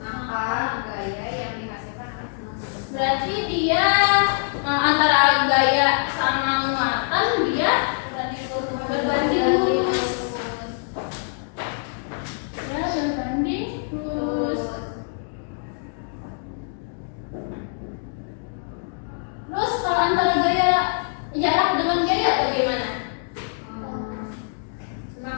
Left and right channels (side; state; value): right; silent; digital silence